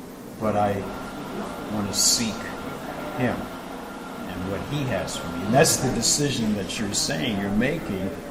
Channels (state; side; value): identical; both; correlation 1.00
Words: but I want to seek Him and what He has for me. And that's the decision that you're saying, you're making.